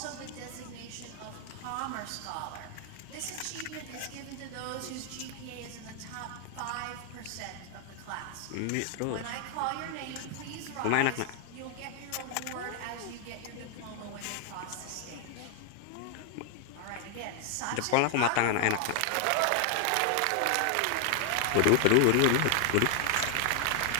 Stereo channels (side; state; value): both; different; correlation 0.00